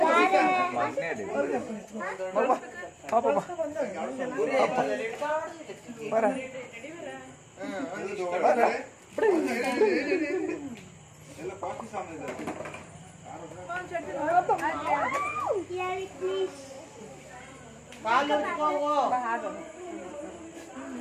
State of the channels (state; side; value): identical; both; correlation 1.00